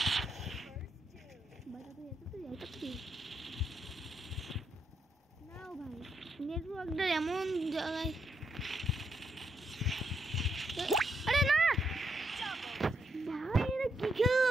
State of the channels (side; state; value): both; normal; correlation 0.79